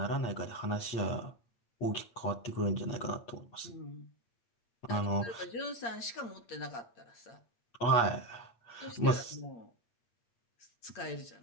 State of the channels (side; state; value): right; late; 8.7 ms